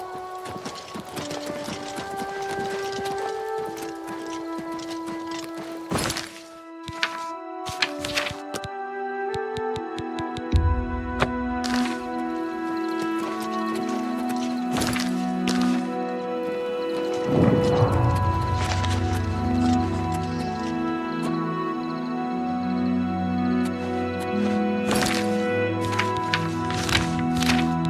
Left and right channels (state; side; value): identical; both; correlation 1.00